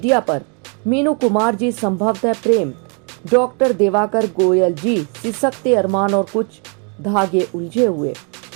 पर, मीनू कुमार जी संभवतः प्रेम, डॉक्टर देवाकर गोयल जी सिसकते अरमान और कुछ धागे उलझे हुए,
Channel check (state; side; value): quieter; left; 37.3 dB